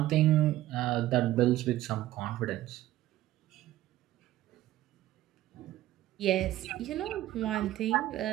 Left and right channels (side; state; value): left; quieter; 14.8 dB